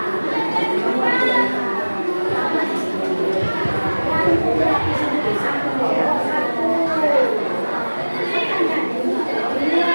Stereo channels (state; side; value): inverted; both; correlation -1.00